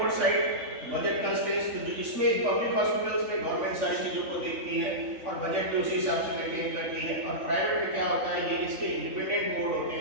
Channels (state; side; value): late; left; 3.5 ms